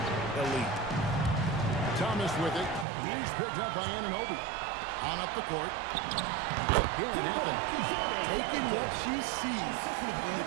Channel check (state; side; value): drops out; left; at 2.9 s